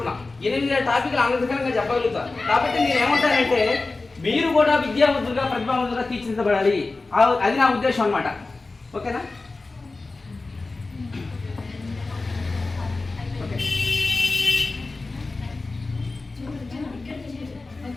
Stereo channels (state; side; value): quieter; right; 3.5 dB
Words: 8000 టాపిక్లు ఆంధ్రప్రదేశ్గా చెప్పగలుగుతాను. కాబట్టి నేను ఏమంటానంటే మీరు కూడా విద్యావంతులుగా, ప్రతిభావంతులుగా తీర్చిదిద్దబడాలి. అది నా ఉద్దేశం అన్నమాట. ఓకేనా? ఓకే,